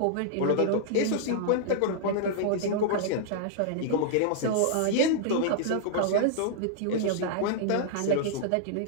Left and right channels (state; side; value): different; both; correlation -0.01